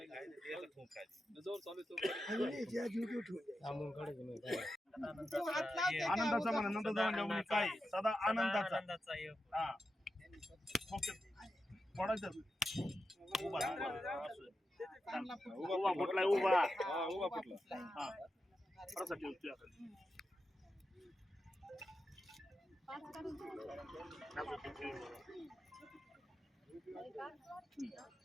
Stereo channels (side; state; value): both; normal; correlation 0.89